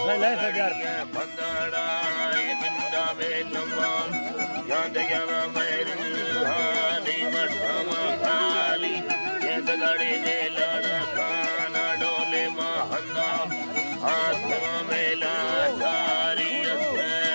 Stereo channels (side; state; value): both; inverted; correlation -1.00